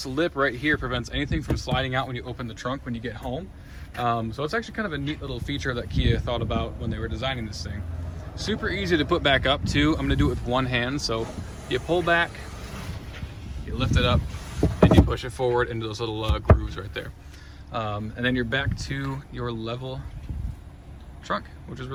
lip right here prevents anything from sliding out when you open the trunk when you get home. So it's actually kind of a neat little feature that Kia thought about when they were designing this thing. Super easy to put back up too. I'm gonna do it with one hand. So you pull back, you lift it up, and you push it forward into those little grooves right there. And then you're back to your level trunk, which is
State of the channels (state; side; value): identical; both; correlation 1.00